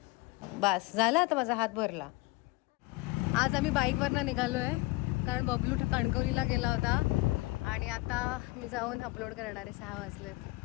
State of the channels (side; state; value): right; quieter; 22.5 dB